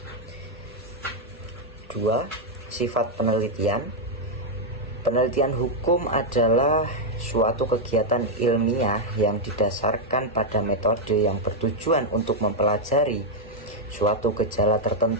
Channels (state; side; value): normal; both; correlation 0.00